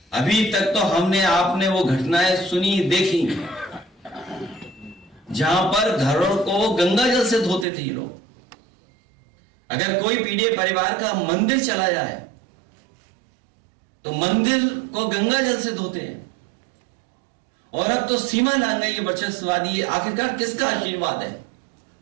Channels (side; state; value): left; drops out; at 7.7 s